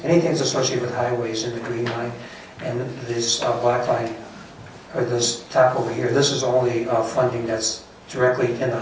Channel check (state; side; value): identical; both; correlation 1.00